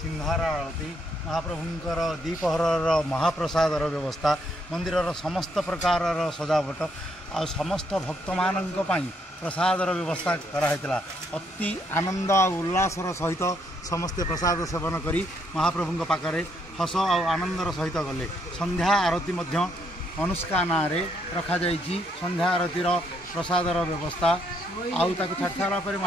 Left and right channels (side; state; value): both; normal; correlation 0.73